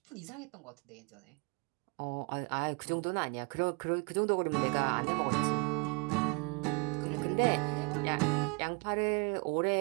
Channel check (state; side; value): quieter; left; 32.9 dB